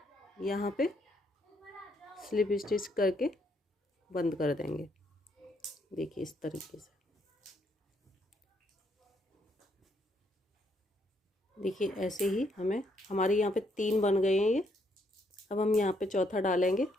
यहाँ पे स्लिप स्टिच करके बंद कर देंगे। देखिए इस तरीके से। देखिए ऐसे ही हमारे यहाँ पे 3 बन गए हैं ये। अब हम यहाँ पे चौथा डालेंगे।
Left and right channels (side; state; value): both; normal; correlation 0.72